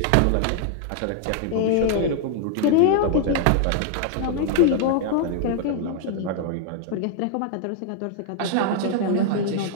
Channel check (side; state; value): both; different; correlation 0.00